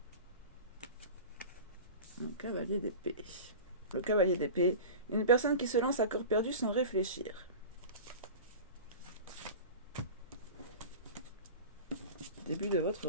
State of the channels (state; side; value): inverted; both; correlation -0.33